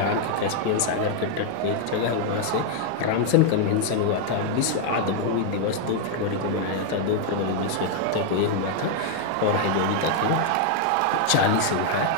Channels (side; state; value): both; different; correlation 0.00